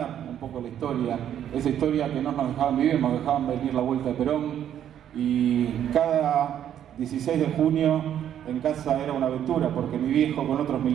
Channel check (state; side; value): quieter; left; 10.2 dB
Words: un poco la historia. Esa historia que no nos dejaban vivir, nos dejaban venir la vuelta de Perón. Y cada 16 de junio en casa era una aventura, porque mi viejo con otros